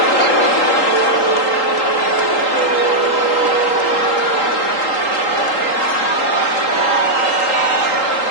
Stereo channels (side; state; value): right; late; 3.8 ms